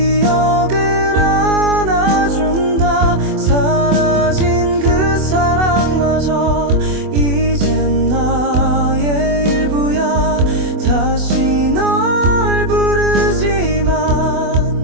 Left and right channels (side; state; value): left; late; 24 ms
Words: 안아준다. 사라진 그 사랑마저 이젠 나의 일부야. 다시 널 부르지만